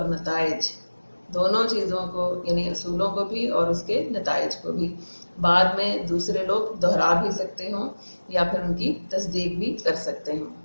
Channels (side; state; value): both; inverted; correlation -1.00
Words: نتائج, دونوں چیزوں کو یعنی اصولوں کو بھی اور اس کے نتائج کو بھی, بعد میں دوسرے لوگ دہرا بھی سکتے ہوں یا پھر ان کی تصدیق بھی کر سکتے ہوں.